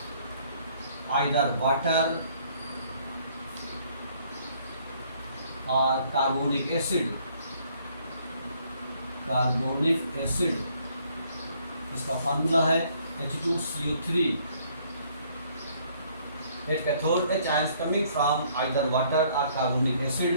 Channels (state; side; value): inverted; both; correlation -0.63